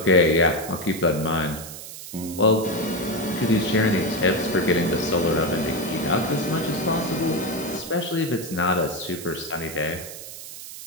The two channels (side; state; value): right; noise; hiss, 12 dB below the sound